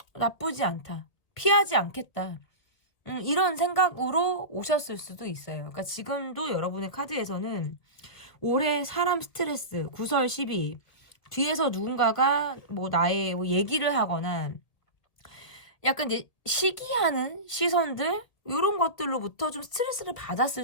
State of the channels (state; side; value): late; right; 2.0 ms